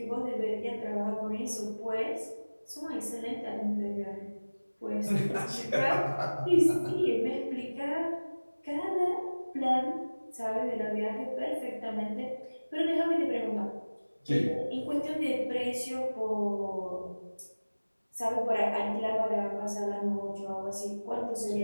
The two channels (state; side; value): inverted; both; correlation -1.00